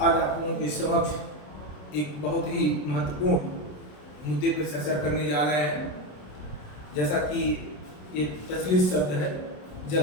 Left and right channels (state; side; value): late; right; 27 ms